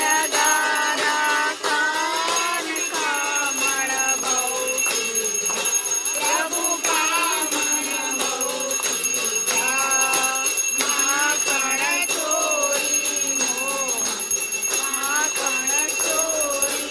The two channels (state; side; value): identical; both; correlation 1.00